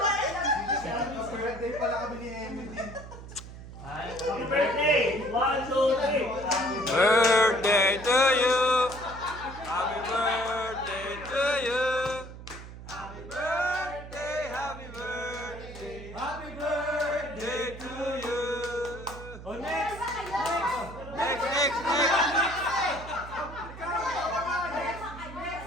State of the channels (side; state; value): right; noise; hum, 13 dB below the sound